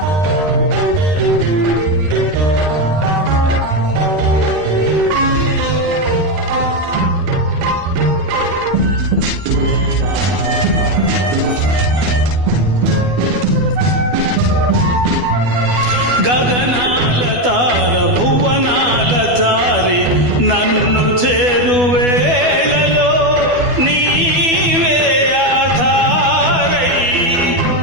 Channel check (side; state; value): left; late; 12 ms